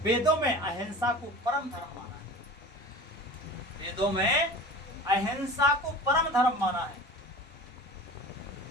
वेदों में अहिंसा को परम धर्म माना है। वेदों में अहिंसा को परम धर्म माना है।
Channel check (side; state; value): both; normal; correlation 0.37